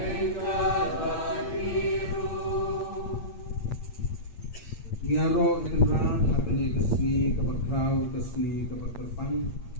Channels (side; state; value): right; late; 8.6 ms